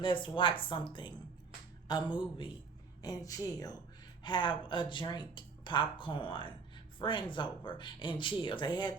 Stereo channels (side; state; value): left; quieter; 4.9 dB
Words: let's watch something, a movie, and chill. Have a drink, popcorn, friends over, and chill. They had